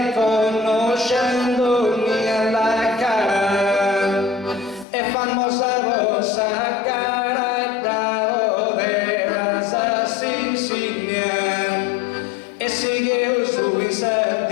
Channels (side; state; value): right; drops out; at 4.9 s